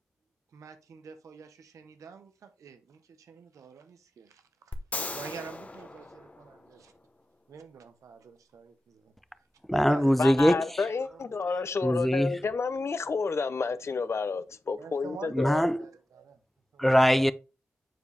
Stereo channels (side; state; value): both; normal; correlation 0.93